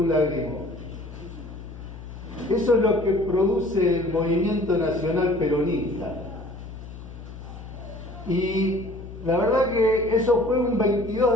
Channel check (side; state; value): left; noise; hum, 13 dB below the sound